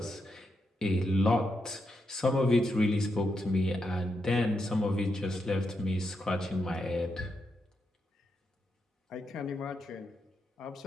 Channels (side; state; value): both; normal; correlation 0.83